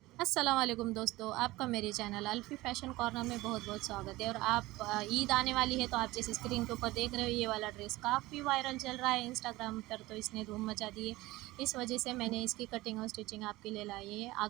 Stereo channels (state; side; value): quieter; left; 19.1 dB